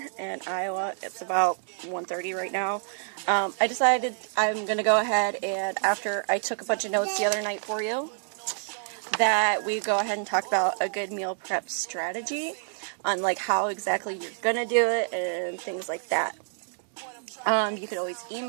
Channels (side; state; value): left; silent; digital silence